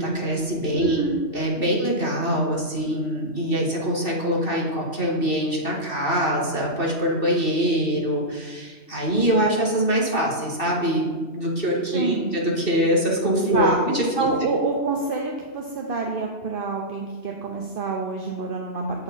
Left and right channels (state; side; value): late; right; 2.7 ms